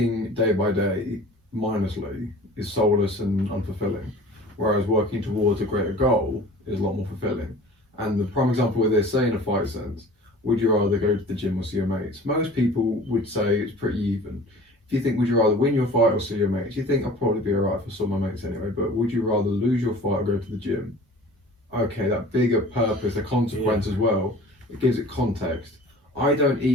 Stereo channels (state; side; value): normal; both; correlation 0.44